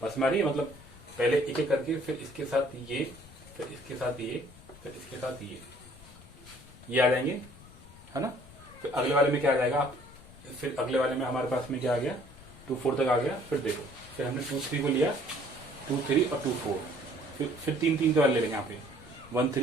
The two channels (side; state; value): left; noise; rumble, 20 dB below the sound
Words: बस हमारी मतलब पहले एक एक करके, फिर इसके साथ ये, फिर इसके साथ ये, फिर इसके साथ ये आ जाएंगे, है ना। फिर अगले वाले में क्या आ जाएगा, फिर अगले वाले में हमारे पास में क्या आ गया 2 4 तक आ गया। फिर देखो, फिर हमने 2 3 को लिया 2 3 और 2 4, फिर 3 3 के वाले ले लेंगे यहाँ पे 1